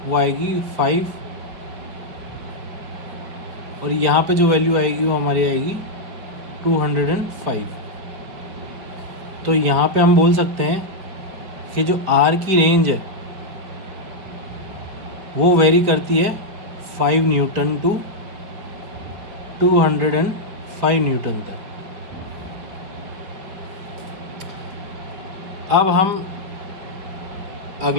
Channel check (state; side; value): late; left; 5.0 ms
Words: वो आएगी 5, और यहाँ पे जो वैल्यू आएगी वो हमारी आएगी 205। तो यहाँ पे हम बोल सकते हैं कि जो R की रेंज है वो वेरी करती है 5 न्यूटन टू 205 न्यूटन तक। अब हम